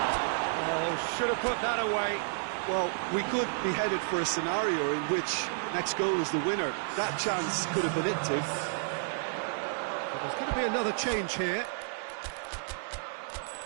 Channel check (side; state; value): left; silent; 57 dB below the other